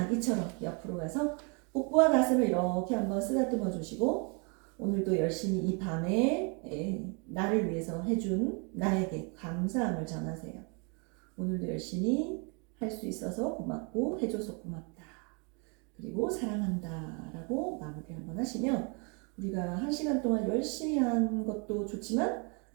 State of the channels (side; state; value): left; quieter; 34.3 dB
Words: 옆으로 가서 복부와 가슴을 이렇게 한번 쓰다듬어 주시고 오늘도 열심히 이 밤에 나를 위해서 해준 나에게 감사함을 전하세요. 오늘도 열심히 할 수 있어서 고맙고 해줘서 고맙다. 그리고 사랑한다 라고 마무리 한번 하시면 우리가 1시간 동안 열심히 한 것도 좋지만